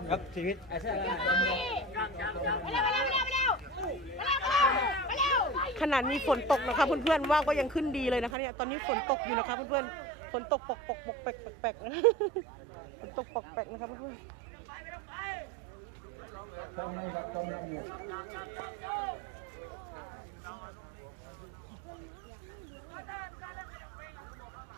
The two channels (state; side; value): drops out; left; at 8.3 s